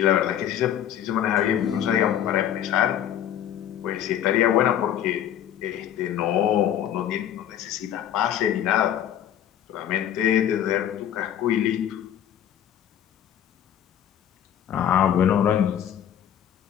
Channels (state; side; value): quieter; right; 10.5 dB